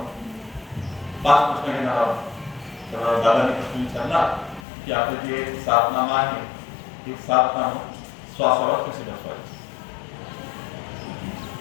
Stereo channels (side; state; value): right; drops out; at 4.6 s